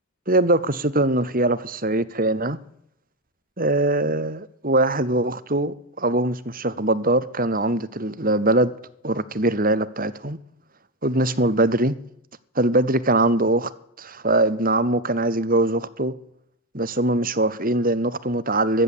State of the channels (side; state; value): both; normal; correlation 0.11